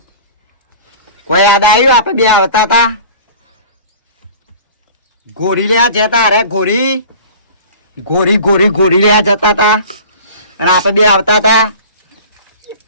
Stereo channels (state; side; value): inverted; both; correlation -0.42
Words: કોઈ યાદ આવ્યું આપણે બે આવતા હતા ગોરી લેવા જતા અરે ગોરી લેવા જતા હતા અને આપણે બે આવતા હતા